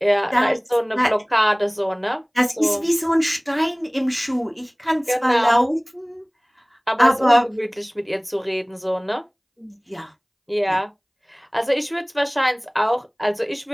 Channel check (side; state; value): both; identical; correlation 1.00